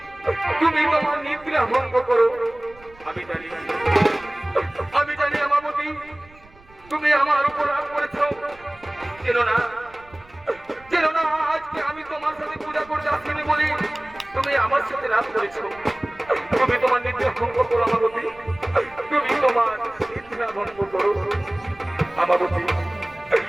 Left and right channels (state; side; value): noise; right; rumble, 25 dB below the sound